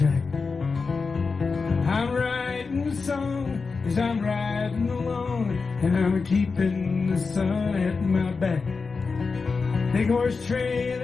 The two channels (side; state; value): right; quieter; 4.6 dB